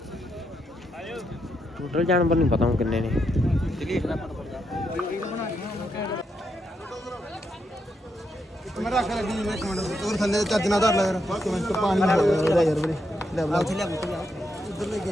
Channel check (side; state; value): both; normal; correlation 0.81